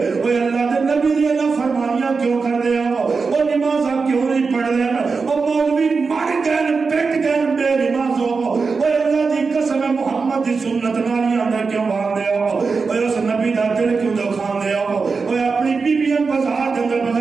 اوے اللہ دے نبی دی فرمانیاں کیوں کر دے او نمازاں کیوں نہیں پڑھ دے او مولوی مر گئے پٹ گئے بے نمازوں اوے اللہ دی قسم محمد دی سنت نالیاں اندر کیوں باندھ دے اوے اس نبی دا دل کیوں دکھان دے اوے اپنی بیویاں بازار دے اندر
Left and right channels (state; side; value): quieter; left; 4.7 dB